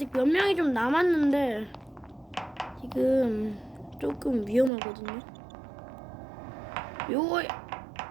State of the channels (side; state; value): left; drops out; at 4.7 s